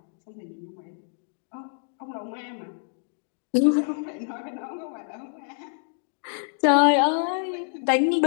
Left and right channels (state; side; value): silent; right; digital silence